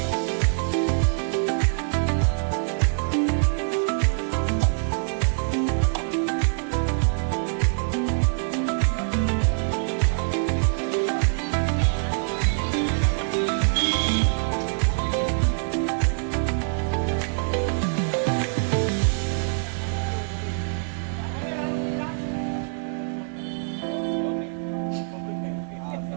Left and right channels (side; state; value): left; silent; 62 dB below the other